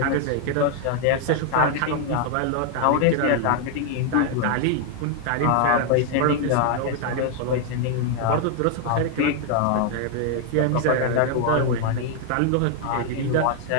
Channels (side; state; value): both; different; correlation 0.00